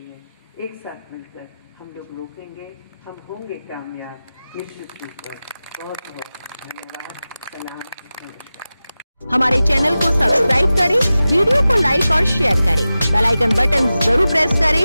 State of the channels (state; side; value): inverted; both; correlation -0.95